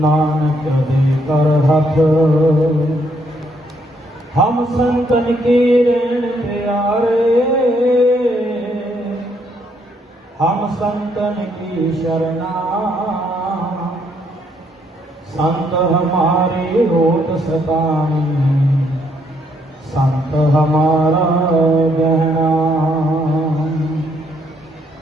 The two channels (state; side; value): normal; both; correlation 0.72